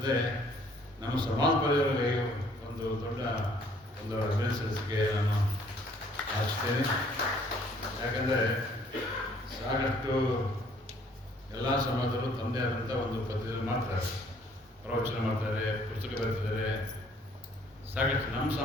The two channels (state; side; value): normal; both; correlation 0.61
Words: ನಮ್ಮ ಸಮಾಜ ಪರಿವಾರಗಳಿಗೆ ಒಂದು ದೊಡ್ಡ ಒಂದು ಅಭಿನಂದಿಸಲಿಕ್ಕೆ ನಾನು ಆಶಿಸ್ತೇನೆ. ಯಾಕಂದರೆ ಸಾಕಷ್ಟು ಎಲ್ಲ ಸಮಾಜದಲ್ಲೂ ತಮ್ಮದೇ ಆದಂಥ ಒಂದು ಪದ್ಧತಿಯಲ್ಲಿ ಮಾಡ್ತಾರೆ, ಪ್ರವಚನ ಮಾಡ್ತಾರೆ, ಪುಸ್ತಕ ಬರೆದಿದ್ದಾರೆ. ಸಾಕಷ್ಟು ನಮ್ಮ